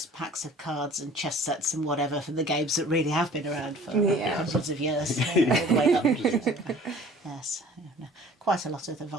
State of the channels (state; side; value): normal; both; correlation 0.49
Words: packs of cards and chess sets and whatever from the games that really have been around for hundreds of years, all the way up. Yes, quite a lot of the